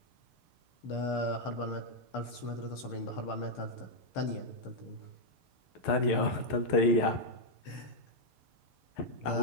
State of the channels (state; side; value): late; right; 6.7 ms